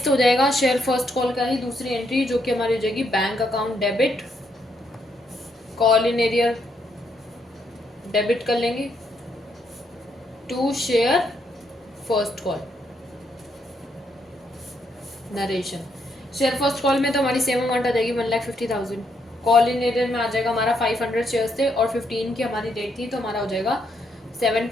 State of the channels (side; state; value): both; normal; correlation 0.75